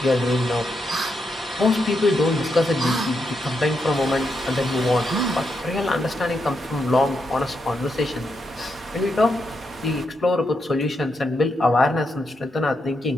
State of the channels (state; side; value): normal; both; correlation 0.82